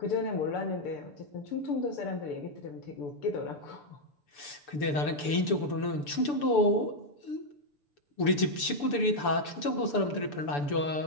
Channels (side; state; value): right; late; 6.8 ms